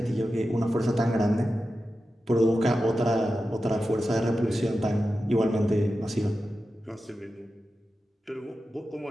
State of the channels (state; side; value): normal; both; correlation 0.92